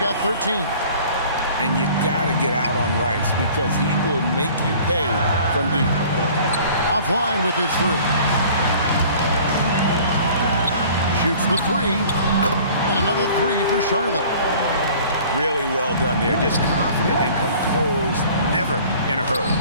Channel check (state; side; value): inverted; both; correlation -0.49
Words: 13. And you got to get out on Rice because he will make you pay from deep. Offline with his 3. Shoots the 3. And another 3 for Charlotte. Really well done there. Just confident and composed, never in a hurry.